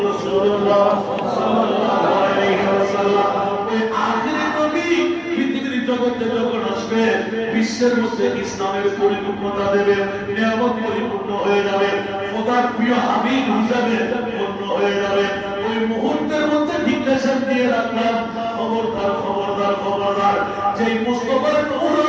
রাসূলুল্লাহ সাল্লাল্লাহু আলাইহি ওয়াসাল্লাম। ওই আখিরি নবী পৃথিবীর জগতে যখন আসবে, বিশ্বের মধ্যে ইসলামের পরিপূর্ণতা দেবে, নিয়ামত পরিপূর্ণ হয়ে যাবে, খোদার প্রিয় হাবিব হিসাবে পূর্ণ হয়ে যাবে। ওই মুহূর্তের মধ্যে ডিক্লেরেশন দিয়ে রাখলাম, খবরদার খবরদার খবরদার, যেই মুস্তাফার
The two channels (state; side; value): identical; both; correlation 1.00